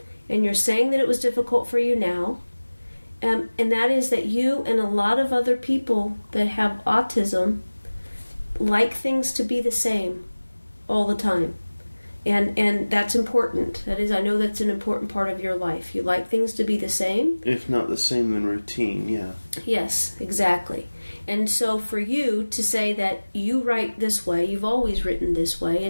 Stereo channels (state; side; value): inverted; both; correlation -1.00